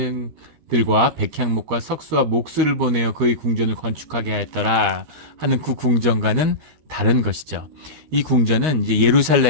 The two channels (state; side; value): late; left; 13 ms